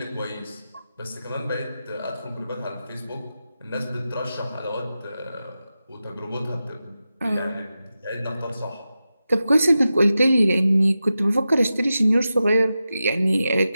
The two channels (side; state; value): both; inverted; correlation -0.92